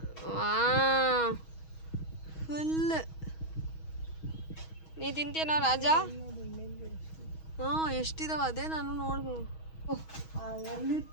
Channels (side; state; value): right; late; 6.3 ms